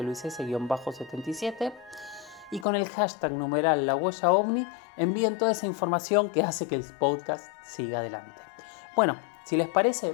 Luis S-77 y con el hashtag numeral La Huella OVNI envíen toda esa información que hace que el podcast siga adelante. Bueno, si les parece,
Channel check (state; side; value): drops out; right; at 2.7 s